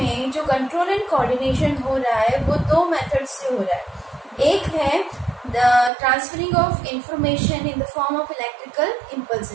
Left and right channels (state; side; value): drops out; left; at 5.9 s